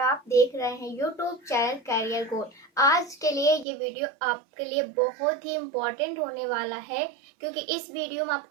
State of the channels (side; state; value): left; drops out; at 3.7 s